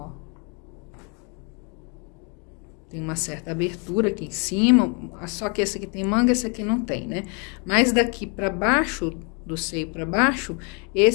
Tem uma certa abertura aqui em cima, só que esse aqui tem manga, esse aqui não tem, né? Mas daqui para baixo, do seio para baixo,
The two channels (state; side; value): quieter; right; 35.0 dB